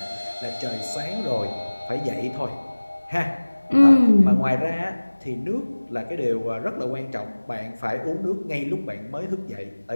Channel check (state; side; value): inverted; both; correlation -1.00